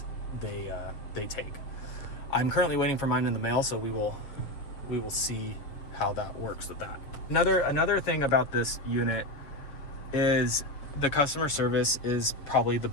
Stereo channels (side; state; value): right; late; 7.0 ms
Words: they take. I'm currently waiting for mine in the mail, so we will we will see how that works with that. Another thing about this unit is the customer service is probably the